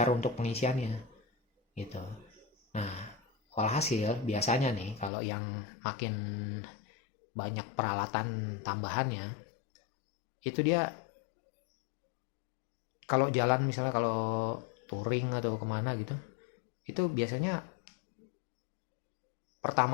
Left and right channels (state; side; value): drops out; right; at 5.1 s